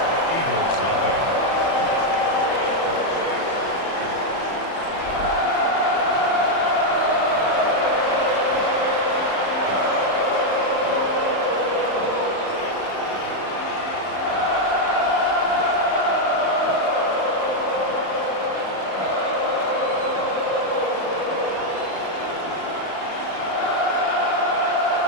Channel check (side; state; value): right; late; 31 ms